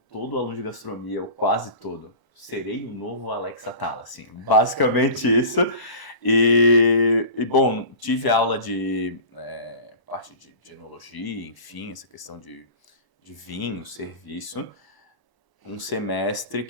todo aluno de gastronomia, ou quase todo. serei o novo Alex Atala, assim, basicamente isso. E bom, tive aula de parte de enologia, enfim, essa questão de vinho, serviço, um semestre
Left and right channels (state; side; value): late; right; 1.0 ms